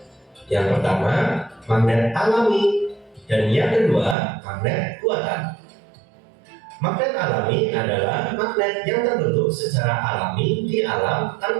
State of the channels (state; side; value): drops out; left; at 4.2 s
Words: Yang pertama, magnet alami, dan yang kedua, magnet buatan. Magnet alami adalah magnet yang terbentuk secara alami di alam